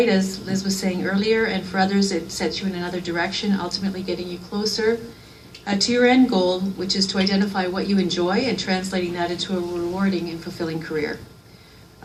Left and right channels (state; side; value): identical; both; correlation 1.00